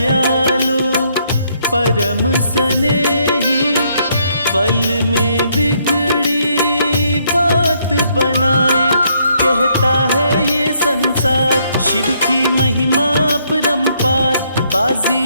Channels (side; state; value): both; inverted; correlation -0.71